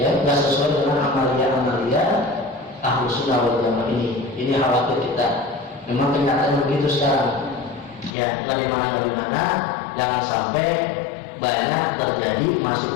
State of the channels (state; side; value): drops out; right; at 8.2 s